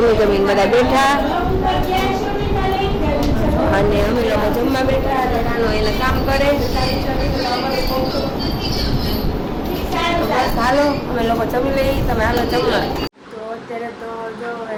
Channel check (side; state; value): both; identical; correlation 1.00